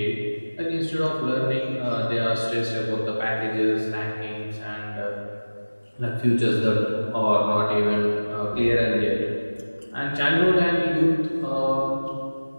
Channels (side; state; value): both; inverted; correlation -1.00